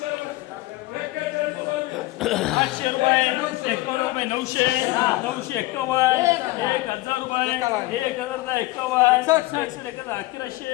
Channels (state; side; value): quieter; right; 19.3 dB